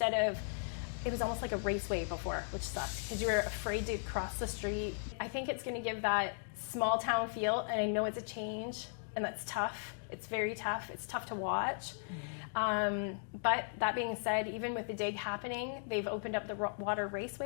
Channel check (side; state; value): right; silent; digital silence